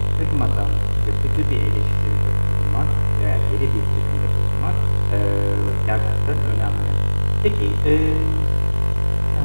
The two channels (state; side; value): inverted; both; correlation -1.00